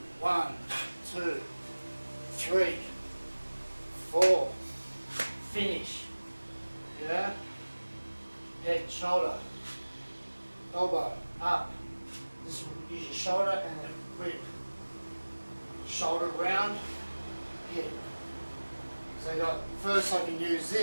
1, 2, 3, 4. Finish. Yeah? Head, shoulder, elbow, up. This will use your shoulder and then whip. Shoulder round, hit. So you got, first I can use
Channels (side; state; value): both; inverted; correlation -1.00